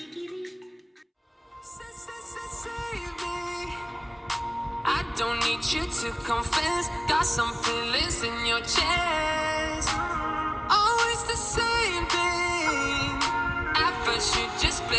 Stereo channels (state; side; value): identical; both; correlation 1.00